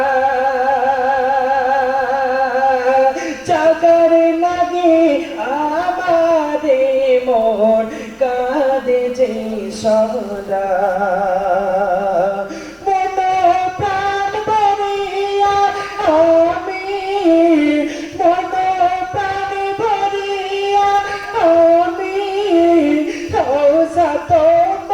চাকার লাগে আমারে মন কাঁদে যে সদা।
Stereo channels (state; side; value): identical; both; correlation 1.00